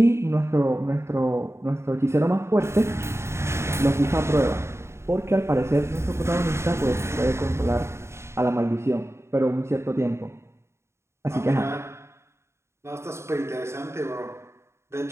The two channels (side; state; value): left; late; 0.13 ms